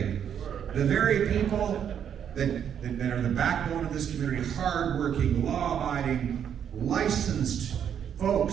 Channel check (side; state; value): left; quieter; 8.7 dB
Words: The very people that are the backbone of this community, hardworking, law-abiding, licensed